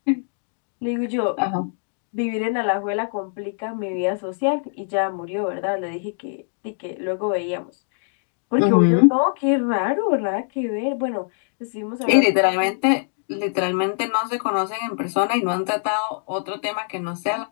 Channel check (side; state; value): right; silent; digital silence